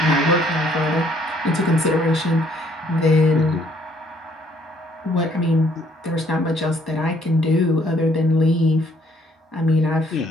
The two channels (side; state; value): both; normal; correlation 0.64